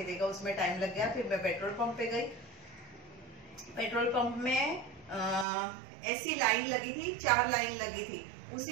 देगा, उसमें टाइम लग गया। फिर मैं पेट्रोल पंप पे गई। पेट्रोल पंप में ऐसी लाइन लगी थी, 4 लाइन लगी थी।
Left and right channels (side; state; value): left; drops out; at 5.5 s